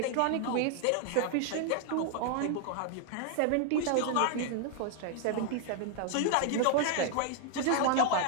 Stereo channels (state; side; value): different; both; correlation 0.00